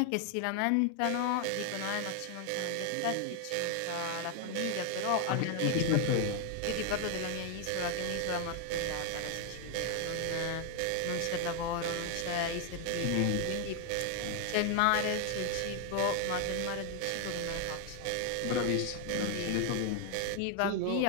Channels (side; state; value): both; different; correlation 0.00